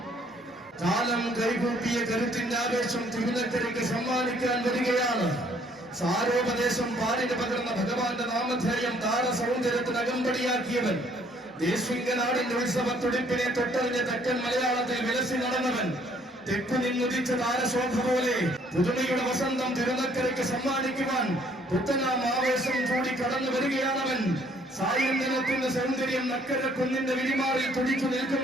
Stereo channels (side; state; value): both; normal; correlation 0.63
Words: കാലം കൈകൂട്ടിയ കരുത്തിന്റെ ആവേശം തിരുനക്കരയ്ക്ക് സമ്മാനിക്കാൻ വരികയാണ്. സാരോപദേശം പാലിന് പകർന്ന ഭഗവാന്റെ നാമധേയം താരസൗന്ദര്യത്തിന് അകമ്പടിയാക്കിയവൻ. ദേശിംഗനാടിന്റെ ഉത്സവത്തുടിപ്പിനെ തൊട്ടറിഞ്ഞ തെക്കൻ മലയാളത്തിൽ വിലസി നടന്നവൻ. തെക്കു നിന്നുദിച്ച താരശോഭ പോലെ പുതുമയുടെ വസന്തം തിരുനക്കരയ്ക്ക് സമ്മാനിക്കുവാൻ പുത്തനാം ആവേശം കൂടി കടന്നു വരികയാണവൻ. സായന്തനത്തിന്റെ സൗന്ദര്യം നക്കര കുന്നിന്റെ വിരിമാറിൽ തുടിച്ചു